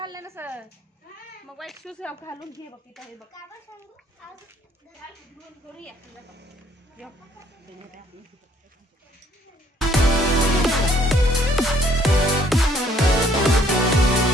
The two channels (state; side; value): normal; both; correlation 0.63